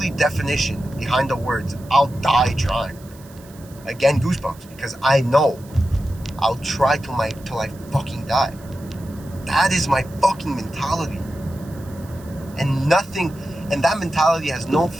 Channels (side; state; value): right; noise; hiss, 24 dB below the sound